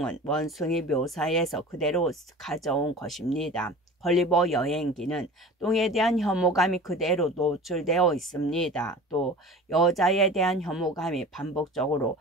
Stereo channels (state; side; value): normal; both; correlation 0.38